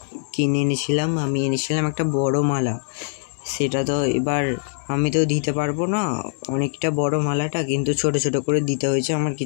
কিনে এনেছিলাম, আমি এনেছিলাম একটা বড় মালা। সেটা তো এবার আমি তো দিতে পারবো না, অনেকটা বড় মালাটা, কিন্তু ছোট ছোট করে দিতে হয়েছে, আমার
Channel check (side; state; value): right; silent; digital silence